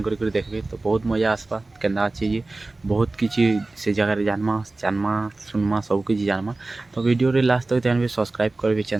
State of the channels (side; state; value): left; quieter; 3.2 dB